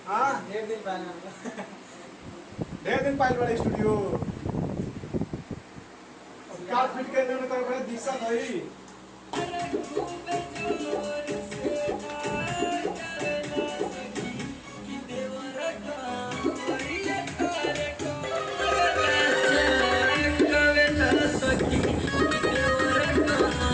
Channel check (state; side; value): identical; both; correlation 1.00